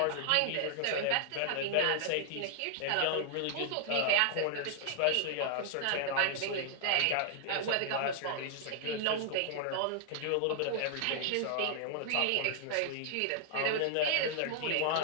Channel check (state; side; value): different; both; correlation -0.01